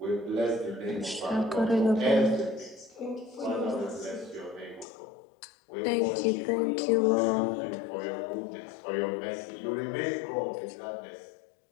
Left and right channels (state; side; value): drops out; right; at 4.9 s